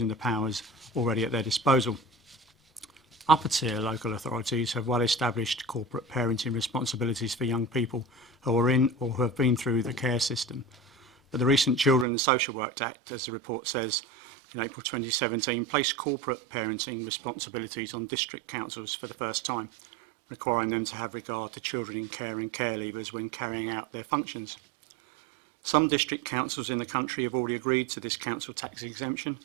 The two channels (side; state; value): left; drops out; at 12.1 s